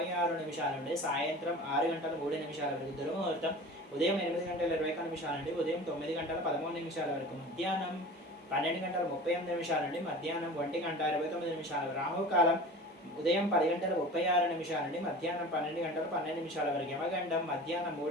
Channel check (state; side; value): normal; both; correlation 0.38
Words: నుండి సాయంత్రం 6:03 వరకు. దుర్ముహూర్తం ఉదయం 8:21 నుండి ఉదయం 9:13 వరకు. మధ్యాహ్నం 12:38 నుండి మధ్యాహ్నం 1:29. రాహుకాలం ఉదయం 10:36 నుండి మధ్యాహ్నం 12:12 వరకు. యమగండం మధ్యాహ్నం